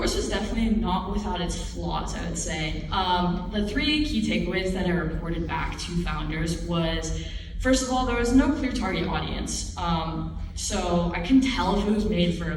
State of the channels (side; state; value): both; identical; correlation 1.00